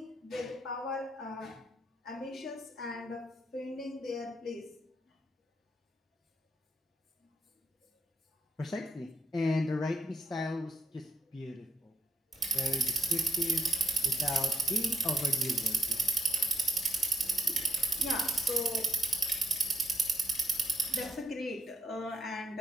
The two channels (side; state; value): both; normal; correlation 0.79